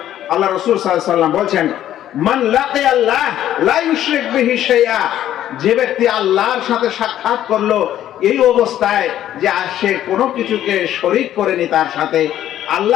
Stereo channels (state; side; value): quieter; right; 11.9 dB